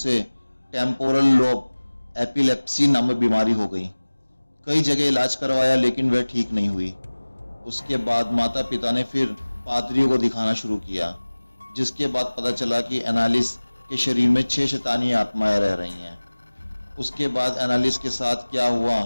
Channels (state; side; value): inverted; both; correlation -1.00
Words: टेम्पोरल लोब एपिलेप्सी नामक बीमारी हो गई। कई जगह इलाज करवाया लेकिन वह ठीक नहीं हुई। उसके बाद माता पिता ने फिर पादरियों को दिखाना शुरू किया, जिसके बाद पता चला कि एनालिस के शरीर में 6 शैतानी आत्माएं रह रही हैं। उसके बाद एनालिस के साथ क्या हुआ,